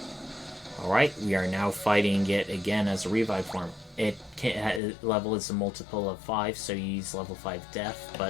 Alright, we are now fighting it again as a revive form. Level is a multiple of 5, so you use level 5 death,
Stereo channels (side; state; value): right; drops out; at 4.8 s